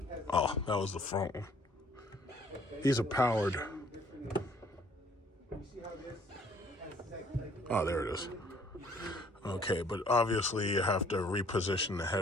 Oh, that was the front one. These are powered. Oh, there it is. Okay, but obviously you have to reposition the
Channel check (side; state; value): both; normal; correlation 0.60